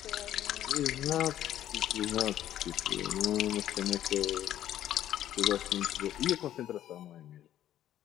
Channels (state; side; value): quieter; right; 12.0 dB